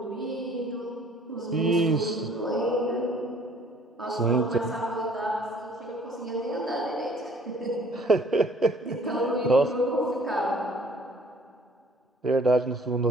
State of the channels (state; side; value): normal; both; correlation 0.56